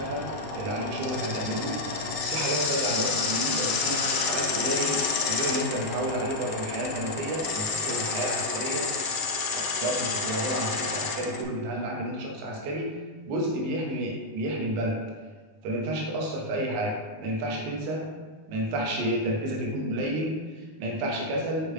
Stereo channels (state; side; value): late; left; 19 ms